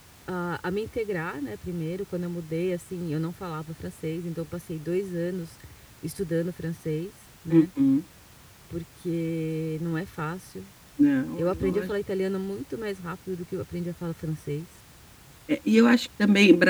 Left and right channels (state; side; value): identical; both; correlation 1.00